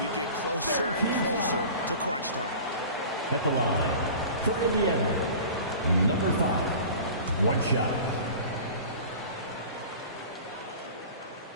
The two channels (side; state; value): both; inverted; correlation -0.40